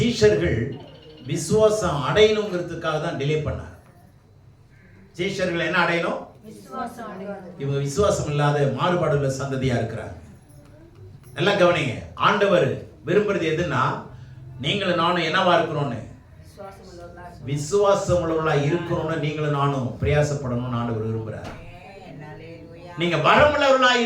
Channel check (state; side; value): identical; both; correlation 1.00